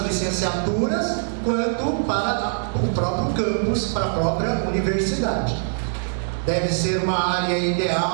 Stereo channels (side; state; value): left; silent; digital silence